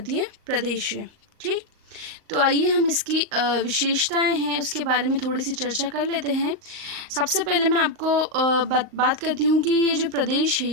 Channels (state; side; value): late; left; 38 ms